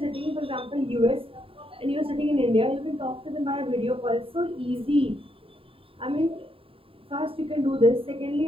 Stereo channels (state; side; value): late; left; 0.27 ms